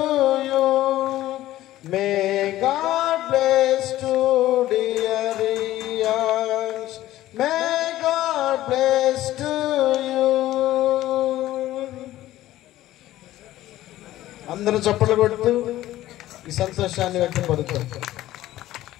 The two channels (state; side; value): quieter; right; 14.8 dB